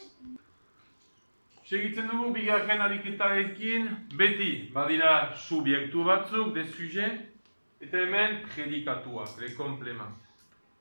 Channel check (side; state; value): both; inverted; correlation -1.00